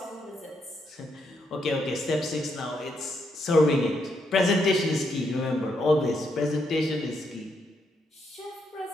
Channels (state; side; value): normal; both; correlation 0.78